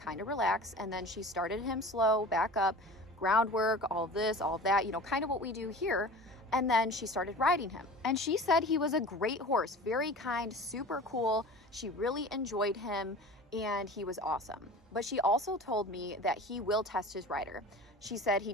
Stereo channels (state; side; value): normal; both; correlation 0.38